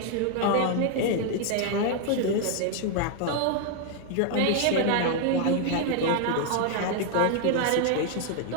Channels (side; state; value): both; different; correlation 0.00